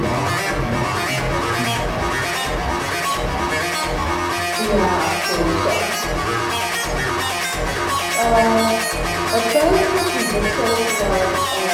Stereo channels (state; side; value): identical; both; correlation 1.00